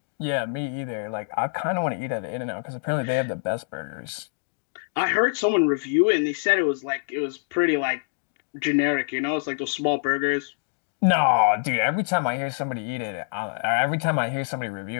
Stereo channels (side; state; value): right; silent; digital silence